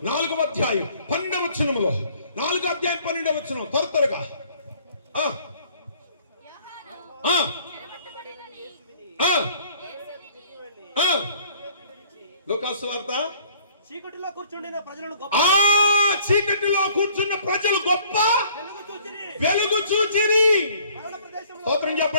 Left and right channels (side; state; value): both; inverted; correlation -0.57